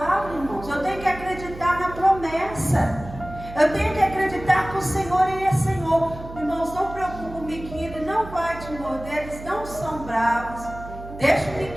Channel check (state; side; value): noise; right; hum, 13 dB below the sound